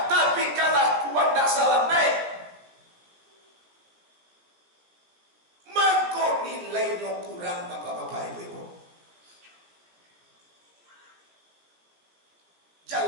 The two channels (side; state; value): left; late; 17 ms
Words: tapi kalakuan tak salah naik. Nilainya kurang bapak-bapak ibu-ibu.